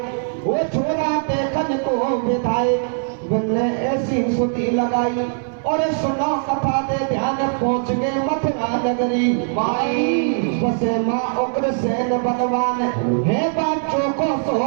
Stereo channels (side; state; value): left; silent; digital silence